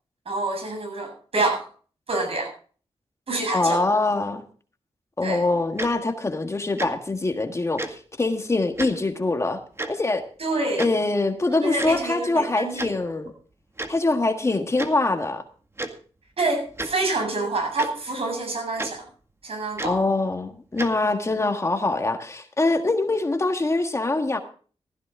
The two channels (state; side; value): normal; both; correlation 0.69